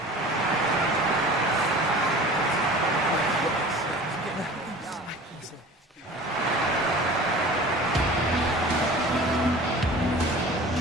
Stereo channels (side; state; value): both; normal; correlation 0.41